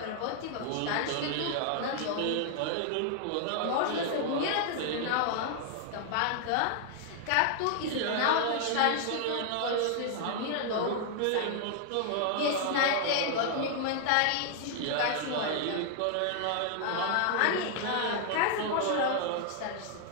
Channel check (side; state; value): both; different; correlation 0.00